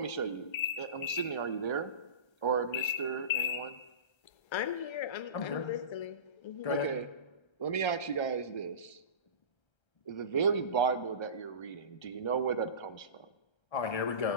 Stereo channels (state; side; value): late; right; 1.3 ms